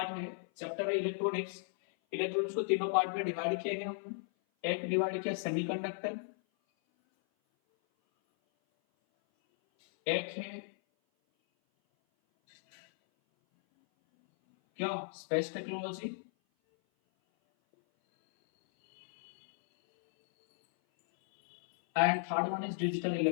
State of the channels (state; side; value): silent; right; 54 dB below the other